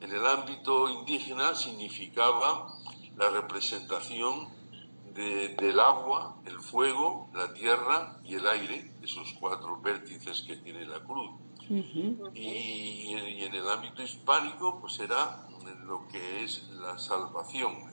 el ámbito indígena significaba la representación del agua, el fuego, la tierra y el aire, esos cuatro vértices que tiene la cruz. Y en el ámbito hispánico, pues era lo que es la salvación,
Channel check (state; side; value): inverted; both; correlation -1.00